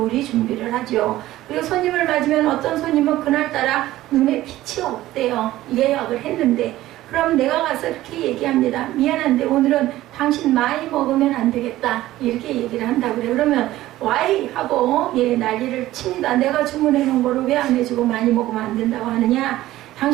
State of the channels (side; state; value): left; quieter; 15.5 dB